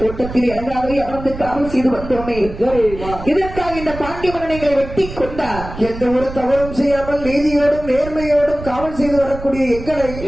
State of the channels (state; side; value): noise; right; rumble, 11 dB below the sound